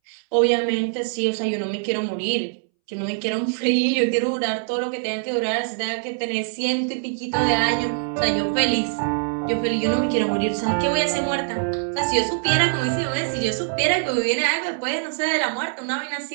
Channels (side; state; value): left; silent; 63 dB below the other